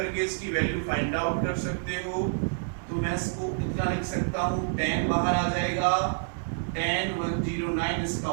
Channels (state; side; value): silent; left; digital silence